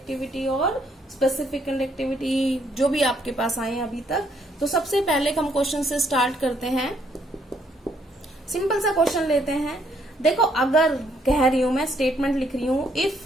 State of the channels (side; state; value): both; normal; correlation 0.70